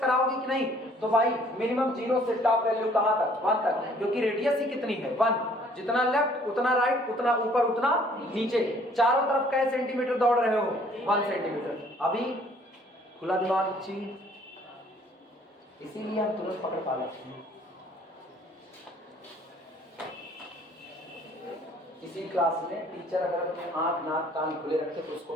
कि नहीं, तो y मिनिमम 0 से टॉप वैल्यू कहां तक, 1 तक, क्योंकि रेडियस ही कितनी है, 1। जितना लेफ्ट उतना राइट, उतना ऊपर उतना नीचे, चारों तरफ कैसे सेंटीमीटर दौड़ रहे हो, 1 सेंटीमीटर। अभी खुला दिमाग चीज, इसीलिए हम तुरंत पकड़ पा लेते हैं। किसी क्लास में टीचर अगर अपने आंख नाक कान खुले रखे तो उसको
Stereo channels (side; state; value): both; normal; correlation 0.59